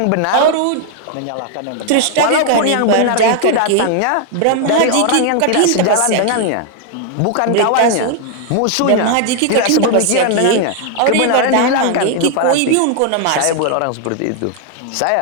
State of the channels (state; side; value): different; both; correlation 0.00